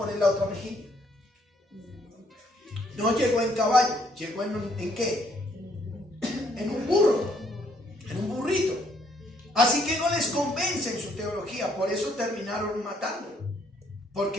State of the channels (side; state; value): both; normal; correlation 0.68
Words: la otra mejilla. No llegó en caballo, llegó ¿en qué? En un burro, en un burrito. Así que no les convence en su teología, por eso terminaron matándolo,